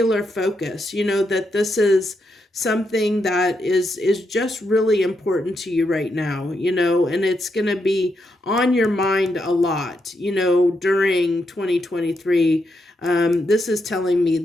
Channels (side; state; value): both; normal; correlation 0.82